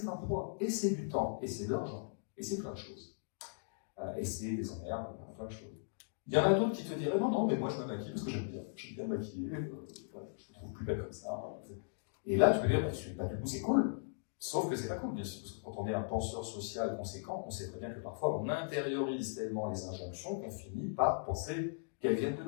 un poids, et c'est du temps, et c'est de l'argent, et c'est plein de choses. Et c'est des emmerdes, plein de choses. Il y en a d'autres qui te diraient non, non, mais moi je me maquille parce que j'aime bien me maquiller, voilà, je me trouve plus belle comme ça. Et là, tu peux dire, bah, du coup, c'est cool. Sauf que c'est pas cool, bien sûr, parce que quand on est un penseur social conséquent, on sait très bien que parfois on intériorise tellement les injonctions qu'on finit par penser qu'elles viennent de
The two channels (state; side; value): silent; right; digital silence